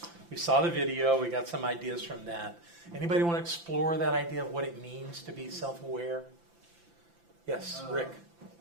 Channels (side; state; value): left; late; 5.9 ms